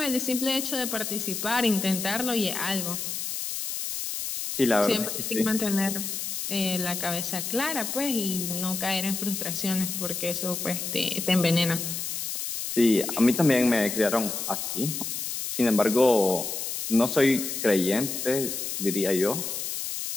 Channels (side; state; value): left; noise; hiss, 4 dB below the sound